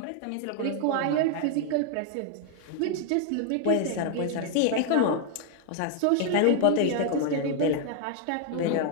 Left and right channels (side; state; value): both; different; correlation 0.00